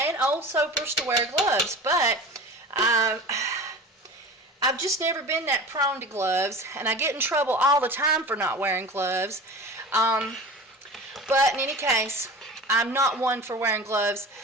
old soapers to wear gloves, but I've just never been that prone to gloves, and I get in trouble all the time for not wearing gloves. But in any case, I'm not one for wearing gloves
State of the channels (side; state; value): both; normal; correlation 0.35